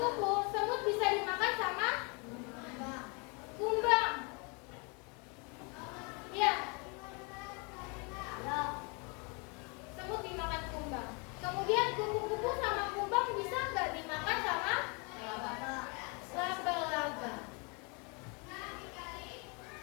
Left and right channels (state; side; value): quieter; right; 32.3 dB